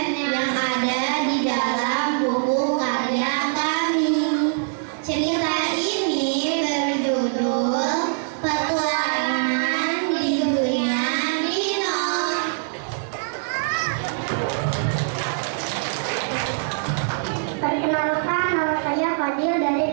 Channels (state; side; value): silent; left; digital silence